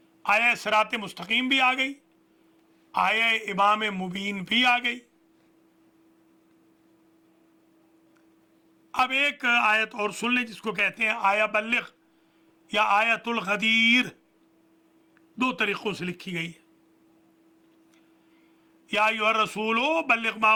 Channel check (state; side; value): identical; both; correlation 1.00